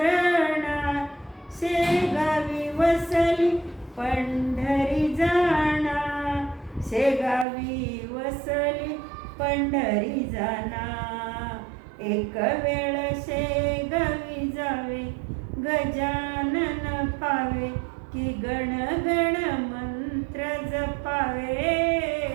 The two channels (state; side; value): drops out; left; at 7.5 s